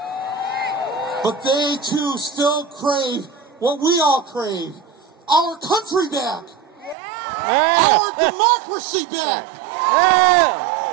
But they too still crave what we all crave, our country back, our democracy back,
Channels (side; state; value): left; drops out; at 7.0 s